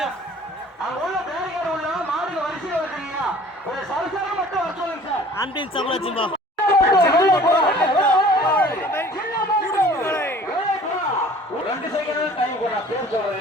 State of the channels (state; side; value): normal; both; correlation 0.49